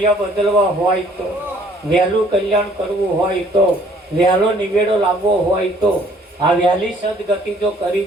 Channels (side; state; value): both; normal; correlation 0.59